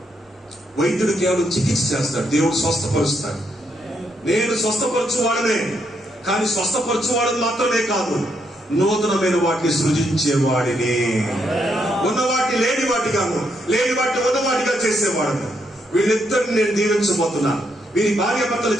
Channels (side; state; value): both; normal; correlation 0.77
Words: వైద్యుడు కేవలం చికిత్స చేస్తాడు, దేవుడు స్వస్థపరుస్తాడు. నేను స్వస్థపరచువాడనే, కానీ స్వస్థపరచువాడని మాత్రమే కాదు, నూతనమైన వాటిని సృజించేవాడిని. ఉన్న వాటిని లేని వాటిగాను, లేని వాటిని ఉన్న వాటిగా చేసేవాడను. వీళ్ళిద్దరిని నేను దీవించబోతున్నాను. వీరి భార్యాభర్తల